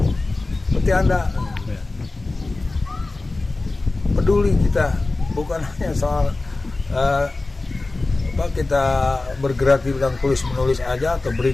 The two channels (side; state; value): right; quieter; 3.2 dB